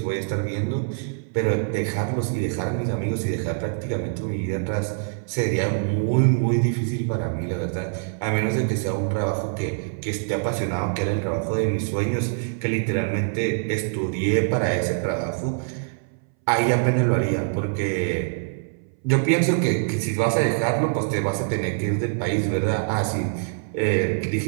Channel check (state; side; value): silent; left; 61 dB below the other